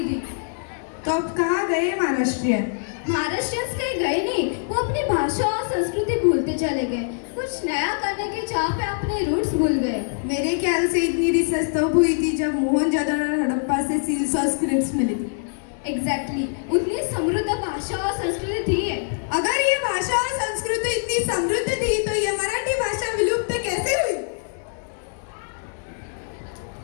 तो अब कहाँ गए महाराष्ट्रियन? महाराष्ट्रियंस कहीं गए नहीं, वो अपनी भाषा और संस्कृति भूलते चले गए. कुछ नया करने की चाह पे अपने रूट्स भूल गए. मेरे ख्याल से इतनी रिसर्च तब हुई थी जब मोहनजोदड़ो और हड़प्पा से सील्स और स्क्रिप्ट्स मिली थी. एग्जैक्टली, उतनी समृद्ध भाषा और संस्कृति थी है. अगर ये भाषा और संस्कृति इतनी समृद्ध थी तो ये मराठी भाषा विलुप्त कैसे हुई?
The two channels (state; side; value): silent; right; digital silence